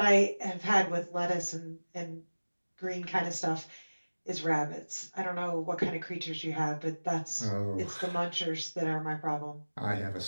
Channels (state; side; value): inverted; both; correlation -1.00